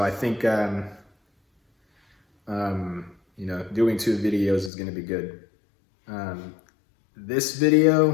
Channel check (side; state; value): right; drops out; at 4.7 s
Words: I think, doing 2 videos is gonna be good. This